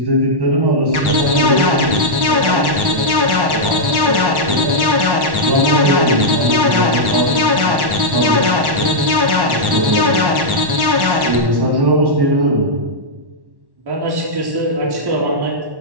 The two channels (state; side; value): late; left; 1.1 ms